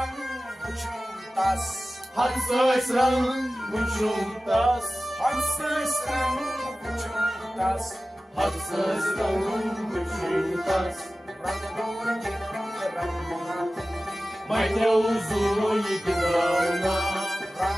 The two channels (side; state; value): both; normal; correlation 0.96